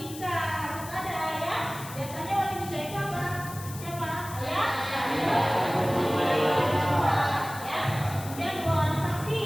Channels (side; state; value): left; noise; hiss, 14 dB below the sound